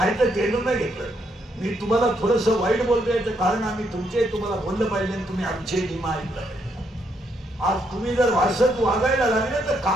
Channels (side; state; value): both; normal; correlation 0.75